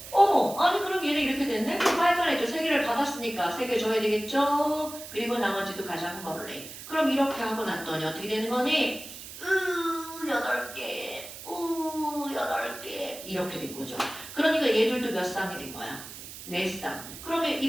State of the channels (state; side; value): noise; right; hiss, 13 dB below the sound